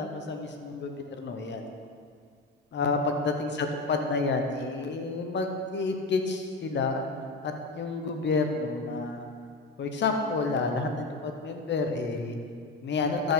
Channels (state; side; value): quieter; right; 3.3 dB